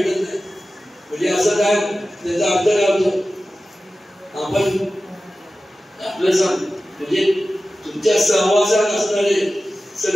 नाही. म्हणजे असं काय, त्याचा अर्थ काय होतो, आपण आपलं सांग म्हणजे तुमच्या सहवासात असणारे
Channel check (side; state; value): both; normal; correlation 0.95